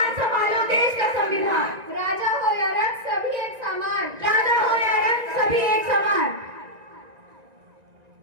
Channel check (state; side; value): late; left; 1.9 ms